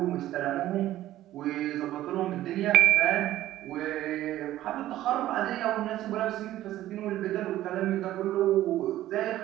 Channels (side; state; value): left; quieter; 14.1 dB